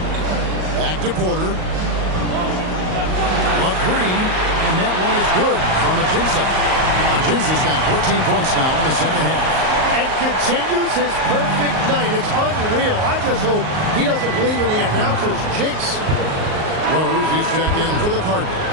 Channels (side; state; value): left; late; 38 ms